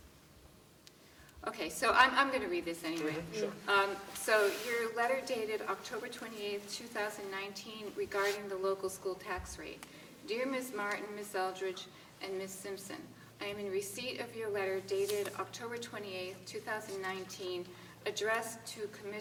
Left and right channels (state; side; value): identical; both; correlation 1.00